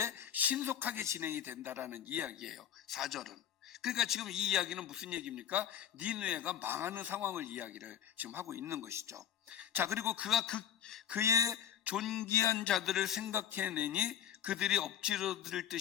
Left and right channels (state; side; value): quieter; right; 10.3 dB